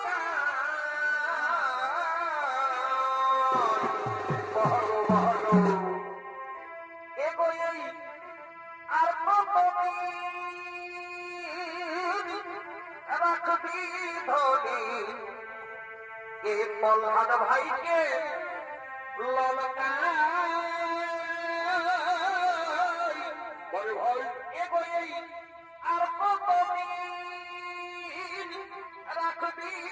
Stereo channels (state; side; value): identical; both; correlation 1.00